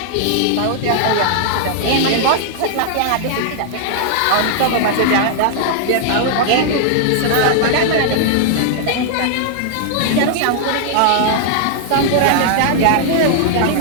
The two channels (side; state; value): both; different; correlation -0.01